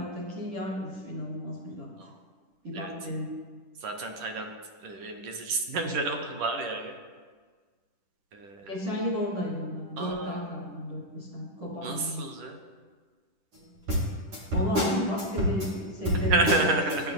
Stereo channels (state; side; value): late; left; 10 ms